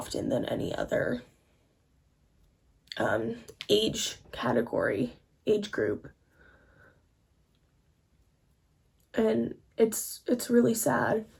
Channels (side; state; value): both; identical; correlation 1.00